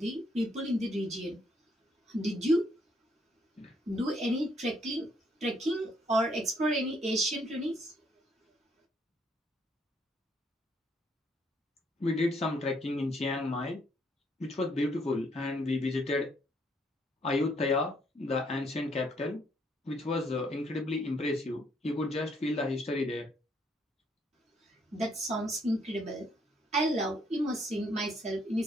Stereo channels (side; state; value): both; normal; correlation 0.70